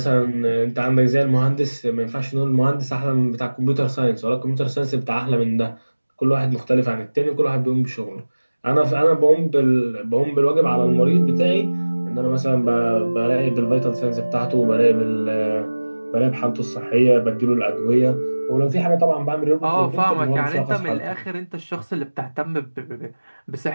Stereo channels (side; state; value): both; inverted; correlation -1.00